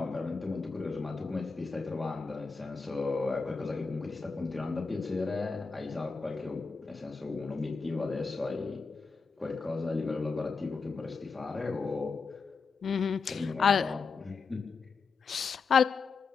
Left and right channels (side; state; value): right; quieter; 4.7 dB